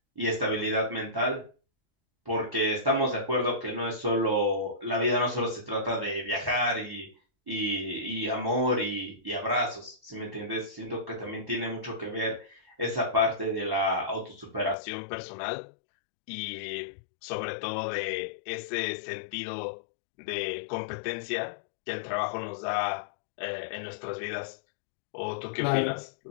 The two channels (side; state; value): right; drops out; at 14.8 s